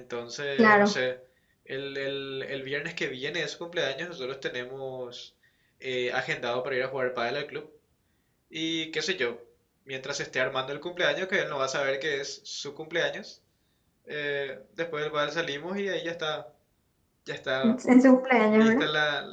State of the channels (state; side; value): identical; both; correlation 1.00